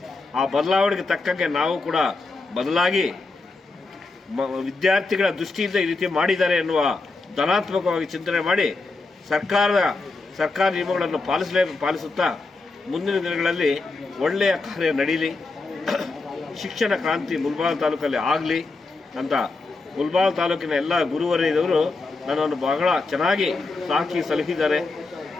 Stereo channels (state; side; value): quieter; right; 3.6 dB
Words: ಆ ಬದಲಾವಣೆಗೆ ತಕ್ಕಂಗೆ ನಾವು ಕೂಡ ಬದಲಾಗಿ ವಿದ್ಯಾರ್ಥಿಗಳ ದೃಷ್ಟಿಯಿಂದ ಈ ರೀತಿ ಮಾಡಿದ್ದಾರೆ ಎನ್ನುವ ಧನಾತ್ಮಕವಾಗಿ ಚಿಂತನೆ ಮಾಡಿ ಸರ್ಕಾರ ನಿಯಮಗಳನ್ನು ಪಾಲಿಸುತ್ತಾ ಮುಂದಿನ ದಿನಗಳಲ್ಲಿ ಒಳ್ಳೆಯ ಕಾರ್ಯ ನಡೀಲಿ, ಶಿಕ್ಷಣ ಕ್ರಾಂತಿ ಮುಳಬಾಗಿಲು ತಾಲೂಕಲ್ಲಿ ಆಗಲಿ ಅಂತ ಮುಳಬಾಗಿಲು ತಾಲೂಕಿನ ಎಲ್ಲ ಗುರುವರಿಯದವರು ನನ್ನನ್ನು ಬಹಳ ಚೆನ್ನಾಗಿ ಸಾಕಿ ಸಲಹಿದ್ದಾರೆ,